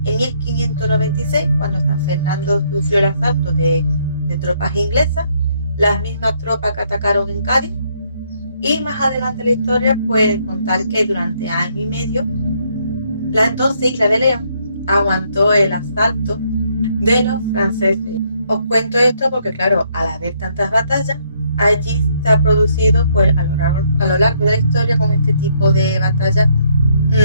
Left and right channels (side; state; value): both; inverted; correlation -0.70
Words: En 1596, cuando San Fernando sufrió el asalto de tropas inglesas, las mismas tropas que atacaron en Cádiz. Y más adelante en la historia puede contar que durante año y medio la entonces isla de León aguantó el asalto de los franceses. Os cuento esto porque, claro, al haber tantas batallas, allí se ha producido, pues, a lo largo de la historia, con este tipo de batallas,